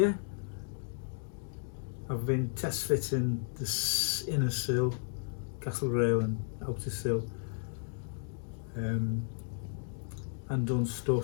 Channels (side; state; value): right; silent; digital silence